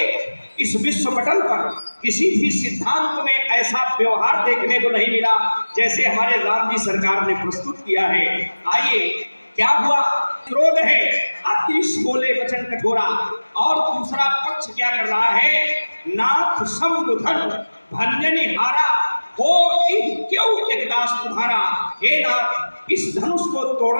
इस विश्व पटल पर किसी भी सिद्धांत में ऐसा व्यवहार देखने को नहीं मिला जैसे हमारे राम जी सरकार ने प्रस्तुत किया है। आइए क्या हुआ, क्रोध है, अतिश बोले वचन कठोरा, और दूसरा पक्ष क्या कर रहा है, नाथ समुधन भंजनी हारा हो क्यों एक दास तुम्हारा। हे नाथ, इस धनुष को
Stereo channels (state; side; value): inverted; both; correlation -1.00